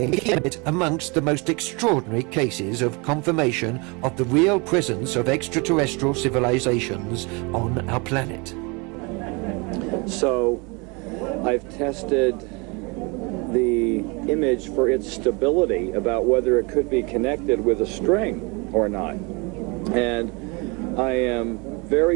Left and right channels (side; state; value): left; quieter; 29.4 dB